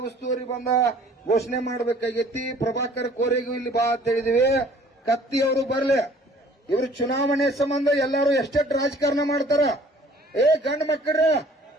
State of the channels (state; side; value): normal; both; correlation 0.53